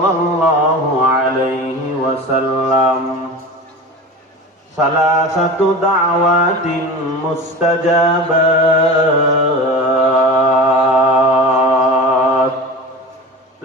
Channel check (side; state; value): both; normal; correlation 0.32